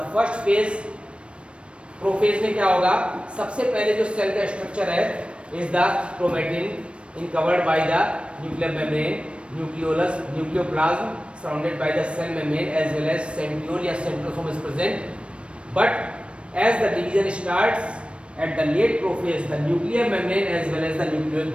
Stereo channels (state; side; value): late; left; 0.059 ms